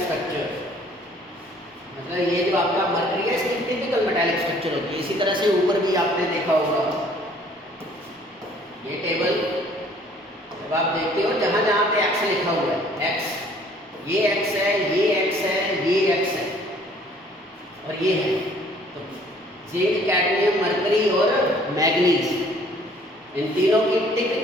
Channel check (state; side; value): normal; both; correlation 0.57